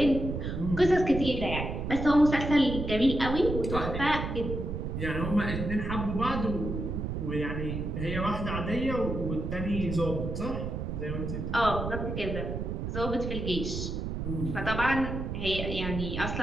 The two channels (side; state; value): right; noise; rumble, 4 dB below the sound